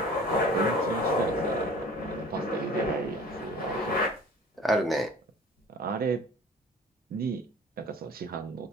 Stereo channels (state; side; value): normal; both; correlation 0.46